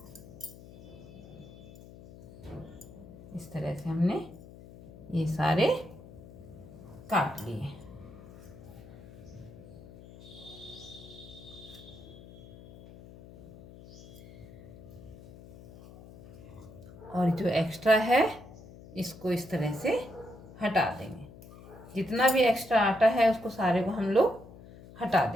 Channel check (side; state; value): left; noise; hum, 18 dB below the sound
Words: इस तरह से हमने ये सारे काट लिए। और जो एक्स्ट्रा है इसको इस तरह से हटा देंगे। जितना भी एक्स्ट्रा आटा है उसको सारे को हम लोग हटा